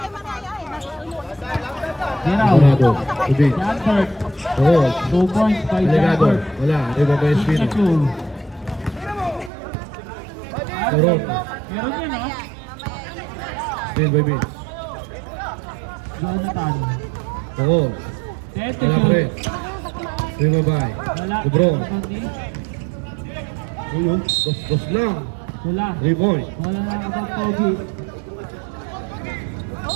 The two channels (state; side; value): drops out; left; at 9.5 s